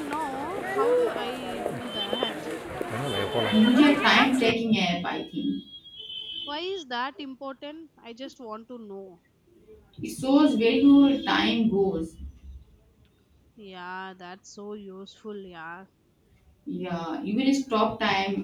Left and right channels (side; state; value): both; identical; correlation 1.00